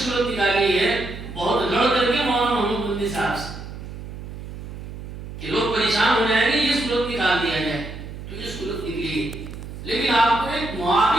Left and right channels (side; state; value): right; noise; hum, 11 dB below the sound